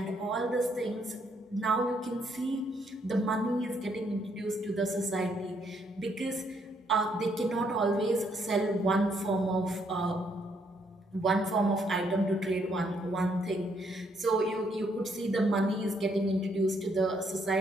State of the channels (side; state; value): both; normal; correlation 0.72